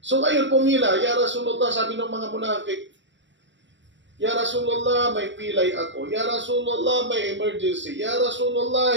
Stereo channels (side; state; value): left; late; 0.53 ms